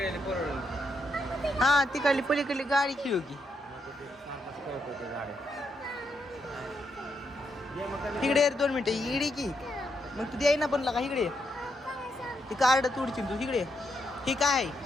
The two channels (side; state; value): both; normal; correlation 0.80